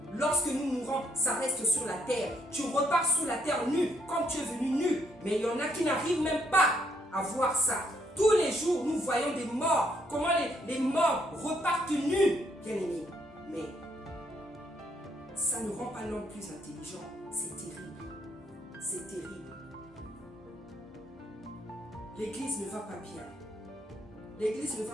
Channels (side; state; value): both; normal; correlation 0.72